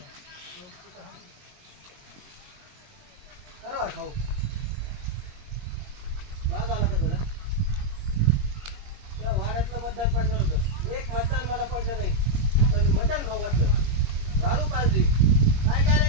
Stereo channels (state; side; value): late; left; 21 ms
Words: बरोबर खाऊ. बाग आला का तुला? त्या वाड्यातलं मतदान पडलं होतं. एक मतदान मला पडलं नाही, पण मटण खाऊ घातलं, दारू पाजली. काय काय